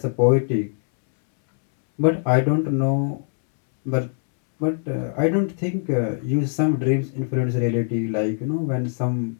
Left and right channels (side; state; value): right; silent; 64 dB below the other